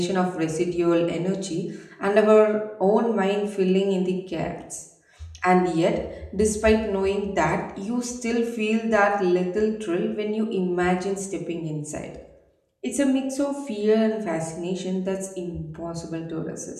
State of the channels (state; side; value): identical; both; correlation 1.00